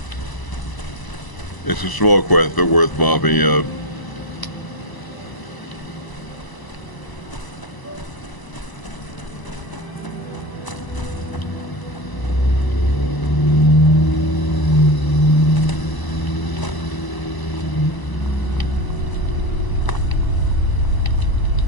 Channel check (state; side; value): late; right; 1.0 ms